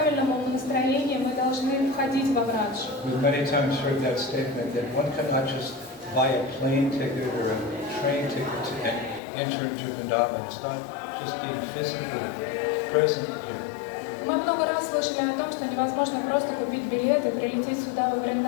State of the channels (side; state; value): right; drops out; at 9.2 s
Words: настроении мы должны входить во Врадж. We've many times heard that statement that one cannot just buy a plane ticket or a train ticket to enter into Vrindavan. It's not just being physically present here. Мы много раз слышали о том, что невозможно просто купить билет и прилететь сюда во